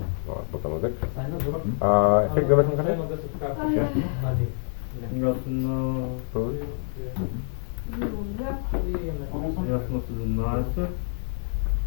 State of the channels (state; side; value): silent; right; 58 dB below the other